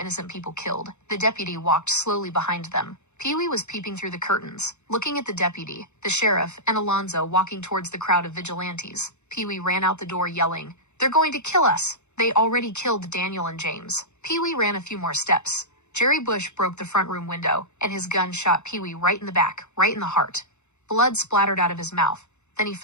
people killed." The deputy walked slowly behind them. Pee-wee was peeping through the curtains, looking at the deputy, the sheriff, and Alonzo walking towards the crowd of vigilantes. Pee-wee ran out the door yelling, "They're going to kill us! They already killed Daniel and James." Pee-wee ran a few more steps. Jerry Bush broke the front room window, and his gun shot Pee-wee right in the back, right in the heart. Blood splattered out of his mouth. Then he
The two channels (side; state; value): right; late; 0.82 ms